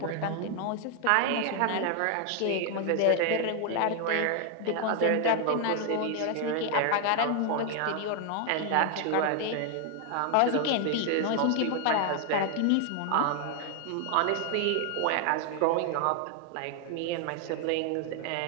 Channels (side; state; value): both; different; correlation 0.00